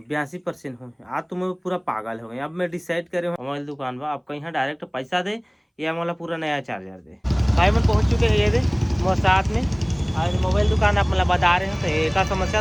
82% हुई। आज तो मैं पूरा पागल हो गई। अब मैं डिसाइड करे मोबाइल दुकान पर आपका यहाँ डायरेक्ट पैसा दे या मोला पूरा नया चार्जर दे। भाई मन पहुँच चुके हैं ये दे मोर साथ में। आज मोबाइल दुकान आप मतलब बता रहे हैं तो एक समस्या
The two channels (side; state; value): both; identical; correlation 1.00